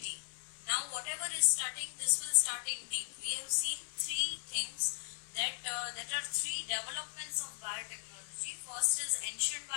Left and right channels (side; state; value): right; silent; digital silence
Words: Now whatever is starting, this will start in deep. We have seen three things that are three developments of biotechnology. First is ancient